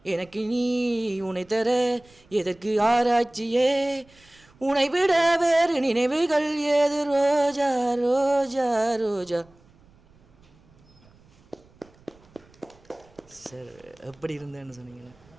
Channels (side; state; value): right; noise; rumble, 29 dB below the sound